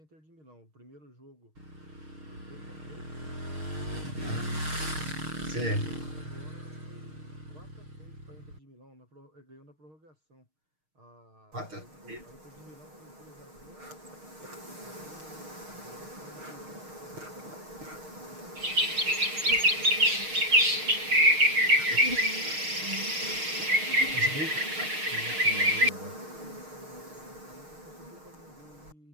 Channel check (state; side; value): late; left; 6.5 ms